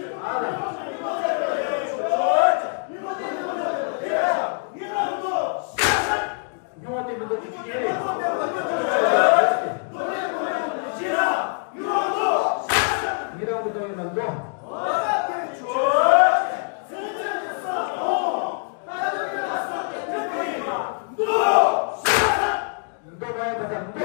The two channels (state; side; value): silent; right; 55 dB below the other